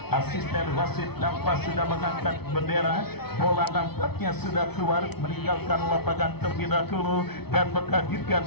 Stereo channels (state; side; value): late; right; 0.97 ms